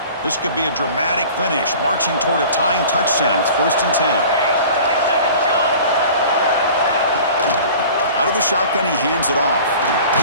This could be a dramatic finish, marching toward a tying touchdown. It's 1st and 10. Out of the shotgun, he hands it off.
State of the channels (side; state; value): both; inverted; correlation -0.43